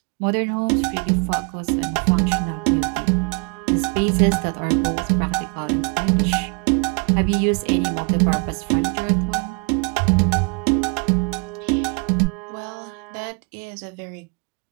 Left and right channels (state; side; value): quieter; left; 32.6 dB